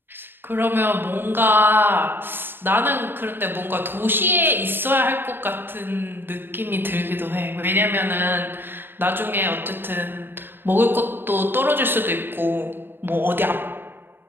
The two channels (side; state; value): left; late; 0.098 ms